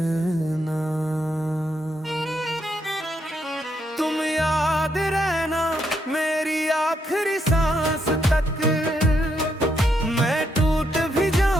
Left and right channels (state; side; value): normal; both; correlation 0.77